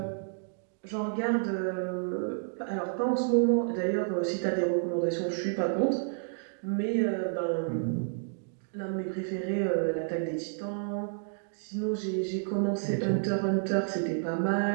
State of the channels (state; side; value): silent; left; digital silence